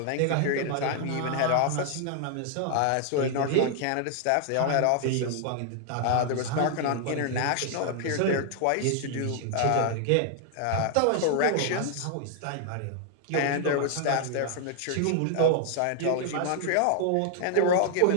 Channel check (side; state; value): both; different; correlation 0.00